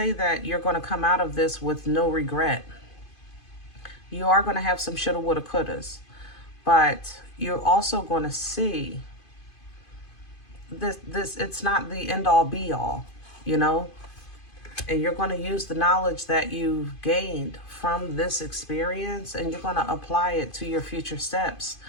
that you're going to come out of this with no regret. You are going to have some shoulda, woulda, couldas. But you're also going to see this, it's not the end-all, be-all, you know? And you're going to use the knowledge that you've gained from this experience, and you're going to apply it to your future steps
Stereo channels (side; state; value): right; late; 2.5 ms